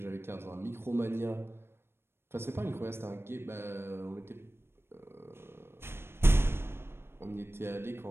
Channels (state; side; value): late; left; 0.12 ms